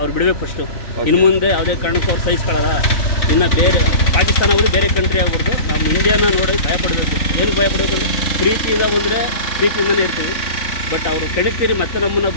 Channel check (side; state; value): right; late; 3.9 ms